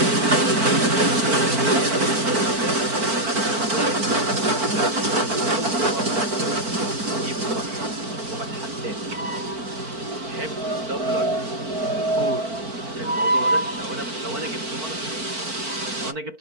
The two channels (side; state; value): left; late; 4.5 ms